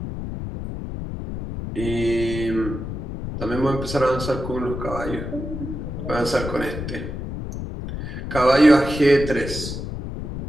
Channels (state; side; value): noise; left; rumble, 6 dB below the sound